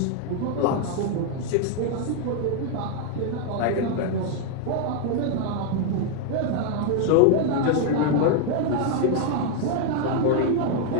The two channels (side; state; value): both; different; correlation 0.00